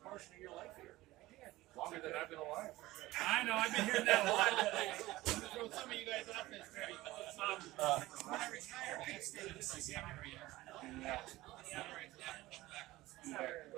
portion of your life here. Longer than I've been alive. I know, I've been hearing that a lot. I'm going to throw some of you guys off this trip. When I retired, I stayed in the same area. I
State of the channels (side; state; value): left; quieter; 18.0 dB